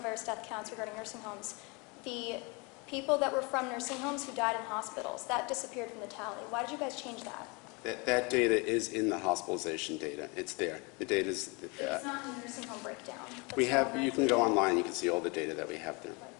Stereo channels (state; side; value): quieter; right; 29.3 dB